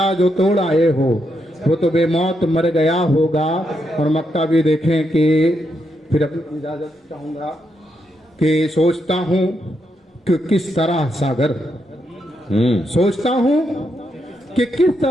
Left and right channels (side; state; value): both; normal; correlation 0.81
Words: जो तोड़ आए हो वो तो बेमौत मर गया होगा। और मक्ता भी देखें कि फिर अपनी इजाजत चाहूंगा कि सोचता हूं कि किस तरह सागर, सोचता हूं कि किस